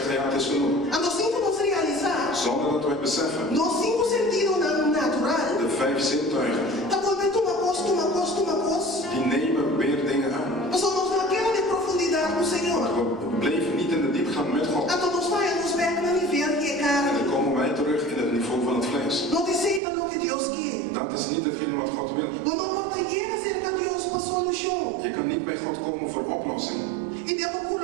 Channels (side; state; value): left; drops out; at 19.8 s